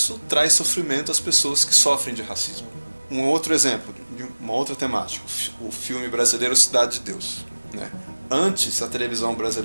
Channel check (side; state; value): both; inverted; correlation -1.00